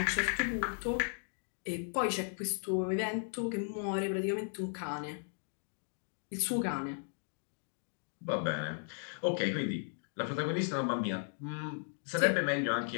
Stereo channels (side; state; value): right; silent; 54 dB below the other